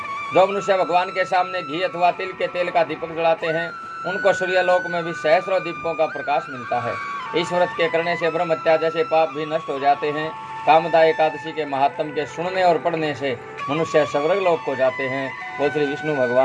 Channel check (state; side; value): identical; both; correlation 1.00